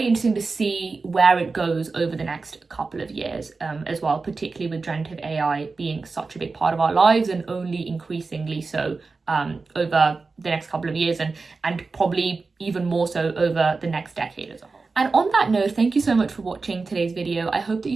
interesting to see where it goes over the next couple of years as well, particularly with generative AI being such a big part of our lives, and only increasingly so over the next couple of years, and probably even more so over the next decade as a whole. And on that note, thank you so much for watching today's video. I hope that you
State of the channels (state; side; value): quieter; left; 4.1 dB